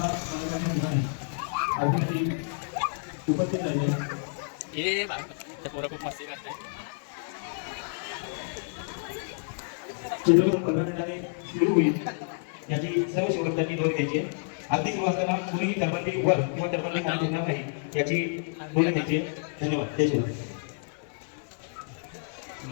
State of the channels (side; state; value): right; silent; 59 dB below the other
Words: खूपच छान हे बाबा पोरं खूप मस्ती करते. चित्रपट 15 मिनिटांनी सुरू होईल याची सर्व शिवभक्तांनी नोंद घ्यायची. अगदी सुरू असताना कुणीही टरबंदी वर किंवा टरबंदी खाली ठेवणार नाही याची नोंद घ्यायची. धन्यवाद. जय शिवराय.